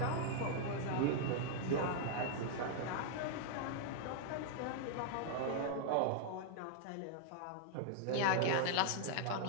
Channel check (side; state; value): both; different; correlation -0.01